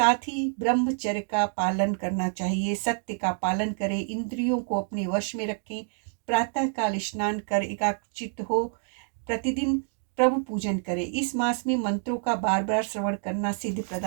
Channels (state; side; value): silent; left; 60 dB below the other